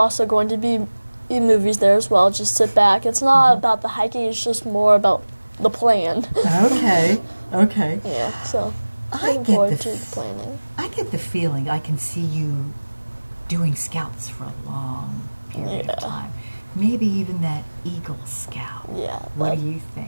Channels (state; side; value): inverted; both; correlation -1.00